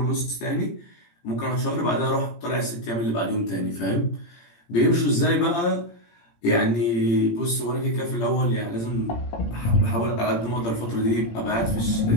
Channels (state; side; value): late; right; 17 ms